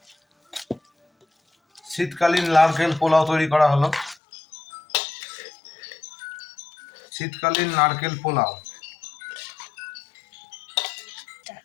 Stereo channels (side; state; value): right; drops out; at 4.2 s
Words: শীতকালীন নারকেল পোলাও তৈরি করা হলো। শীতকালীন নারকেল পোলাও